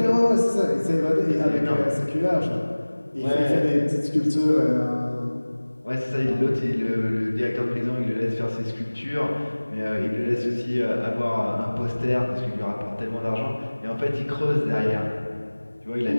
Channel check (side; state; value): both; inverted; correlation -1.00